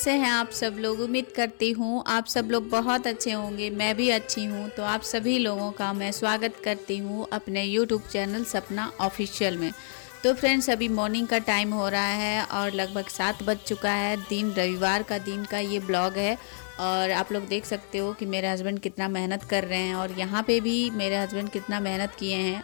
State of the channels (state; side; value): silent; right; digital silence